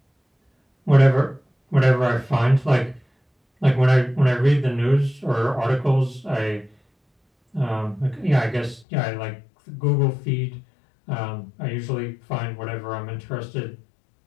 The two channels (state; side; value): drops out; right; at 8.8 s